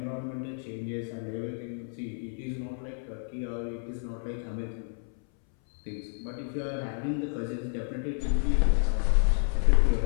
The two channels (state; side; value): silent; right; 58 dB below the other